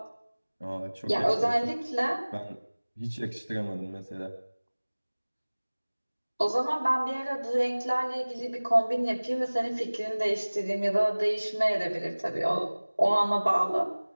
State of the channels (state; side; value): inverted; both; correlation -1.00